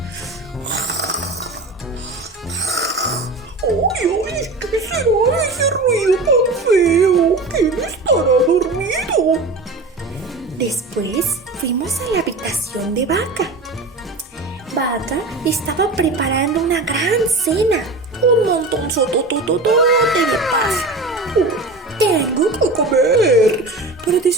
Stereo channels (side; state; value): left; quieter; 3.1 dB